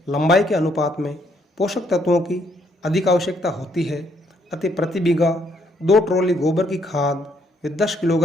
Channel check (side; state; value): both; normal; correlation 0.70